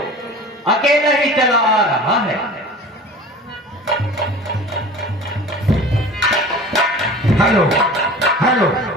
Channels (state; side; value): normal; both; correlation 0.40